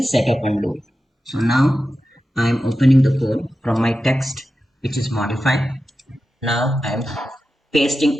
setup and load. So now I am opening the code from my text which is modified. Now I am pasting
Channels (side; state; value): both; normal; correlation 0.92